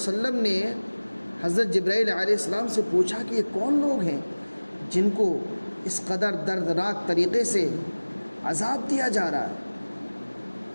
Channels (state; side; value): inverted; both; correlation -1.00